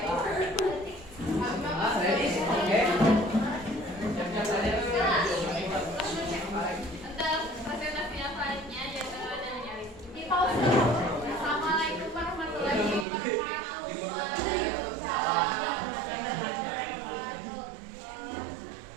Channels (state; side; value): drops out; left; at 13.1 s